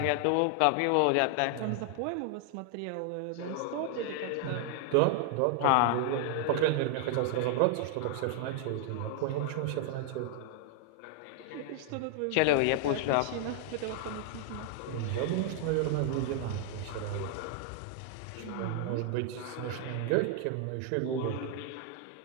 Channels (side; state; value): both; different; correlation 0.00